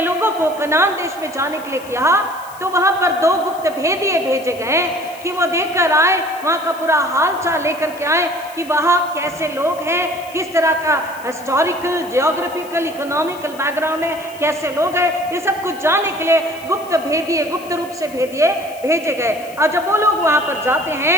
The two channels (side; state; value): left; noise; hiss, 21 dB below the sound